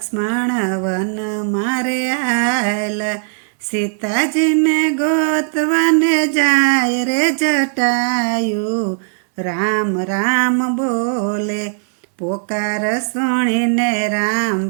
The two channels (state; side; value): silent; left; digital silence